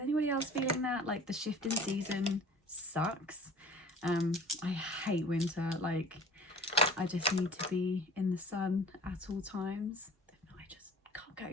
anybody else feeling that? Like the shift in season sucks. I hate winter. Like, I just need to be in the sun at all times. If not, I just can't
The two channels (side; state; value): both; normal; correlation 0.44